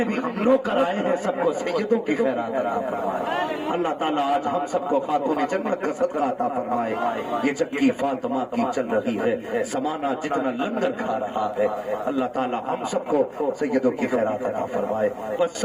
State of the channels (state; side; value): identical; both; correlation 1.00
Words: بھی ہم لوگ کرائے ہیں سب کو سیدوں کی خیرات عطا فرمائے. اللہ تعالیٰ آج ہم سب کو خاتون جنت کا صدقہ عطا فرمائے. یہ چکی فاطمہ کی چل رہی ہے، زمانہ جتنا لنگر کھا رہا ہے، اللہ تعالیٰ ہم سب کو سیدوں کی خیرات عطا فرمائے. بس